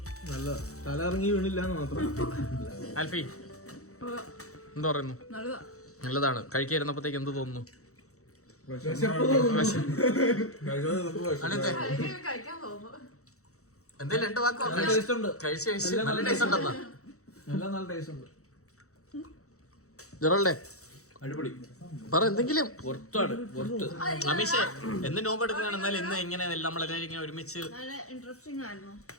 നല്ല തല ഇറങ്ങി വീണില്ല എന്ന് മാത്രം. ആൽഫി എന്ത് പറയുന്നു? നല്ലതാണ്. കഴിക്കാതിരുന്നപ്പോഴത്തേക്ക് എന്ത് തോന്നുന്നു? എന്തേലും രണ്ട് വാക്കോ? കഴിച്ച് നല്ല ടേസ്റ്റ് ഉണ്ടെന്നാ. നല്ല ടേസ്റ്റ് ഉണ്ട്. ജെറോൾഡേ അടിപൊളി. പറ എന്തെങ്കിലും. അമീഷേ, എന്ന് നോമ്പ് എടുക്കുകയാണ്. എന്നാലും ഇന്ന് ഇങ്ങനെ നമ്മളെല്ലാവരും ഇങ്ങനെ ഒരുമിച്ച്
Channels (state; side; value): late; right; 0.65 ms